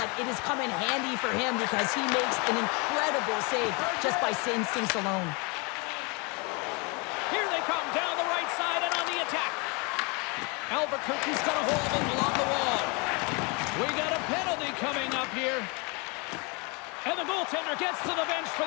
it has come in handy for him because he makes an incredible save just by instincts alone. Here they come down the right side and on the attack. Albuquerque's got a hold of it along the wall. We got a penalty coming up here. And the goaltender gets to the bench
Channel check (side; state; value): right; quieter; 30.8 dB